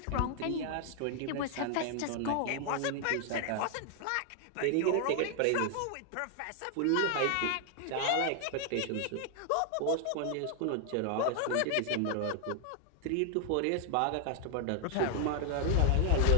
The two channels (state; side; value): different; both; correlation 0.00